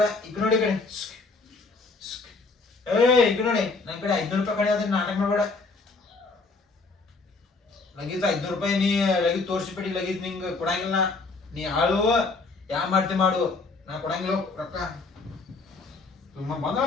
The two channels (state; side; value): quieter; right; 3.8 dB